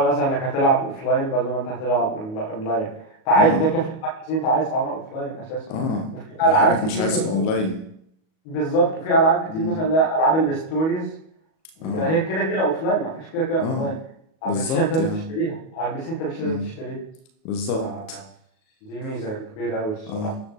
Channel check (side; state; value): right; late; 37 ms